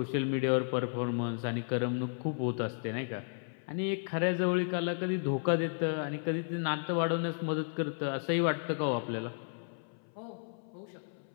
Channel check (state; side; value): silent; right; 55 dB below the other